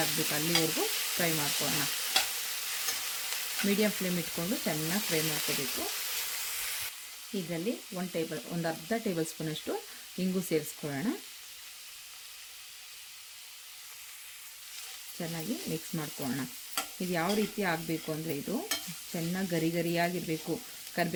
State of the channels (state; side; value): identical; both; correlation 1.00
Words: ಆಗಬೇಕು, ಅಲ್ಲಿವರೆಗೂ ಫ್ರೈ ಮಾಡ್ಕೊಳ್ಳೋಣ. ಮೀಡಿಯಮ್ ಫ್ಲೇಮ್ ಇಟ್ಕೊಂಡು ಚೆನ್ನಾಗಿ ಫ್ರೈ ಮಾಡ್ಕೋಬೇಕು. ಇದರಲ್ಲಿ ಒಂದು ಅರ್ಧ ಟೇಬಲ್ ಸ್ಪೂನಷ್ಟು ಇಂಗು ಸೇರಿಸ್ಕೊಳ್ಳೋಣ. ಚೆನ್ನಾಗಿ ಮಿಕ್ಸ್ ಮಾಡ್ಕೊಳ್ಳೋಣ. ಇದು ಯಾವ ರೀತಿ ಆಗಬೇಕು ಅಂದರೆ ಇದು ಚೆನ್ನಾಗಿ ಗರಿಯಾಗಿರಬೇಕು.